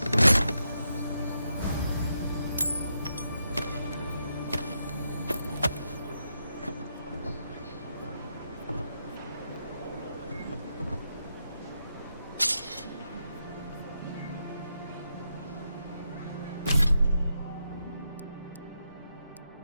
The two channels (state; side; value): inverted; both; correlation -0.83